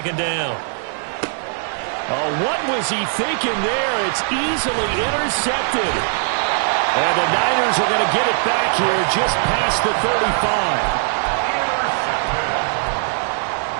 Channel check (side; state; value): left; silent; 59 dB below the other